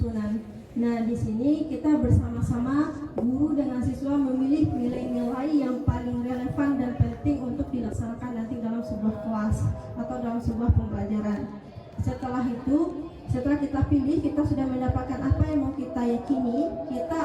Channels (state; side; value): identical; both; correlation 1.00